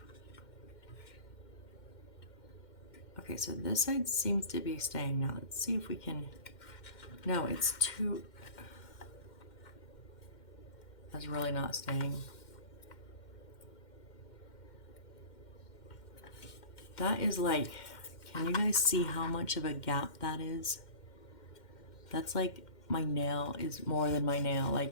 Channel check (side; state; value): right; late; 2.1 ms